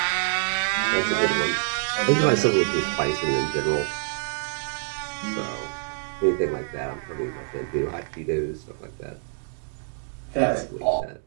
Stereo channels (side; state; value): left; silent; digital silence